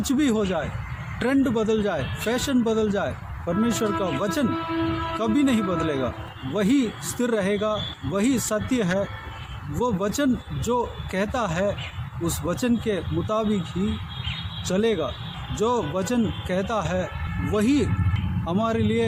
भी हो जाए, ट्रेंड बदल जाए, फैशन बदल जाए, परमेश्वर का वचन कभी नहीं बदलेगा। वही स्थिर रहेगा, वही सत्य है। वो वचन जो कहता है उस वचन के मुताबिक ही चलेगा। जो वचन कहता है वही हमारे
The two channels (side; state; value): both; identical; correlation 1.00